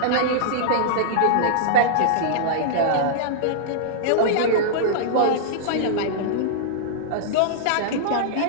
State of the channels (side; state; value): both; different; correlation -0.02